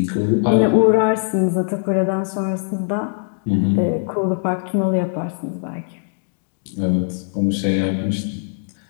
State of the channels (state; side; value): silent; right; digital silence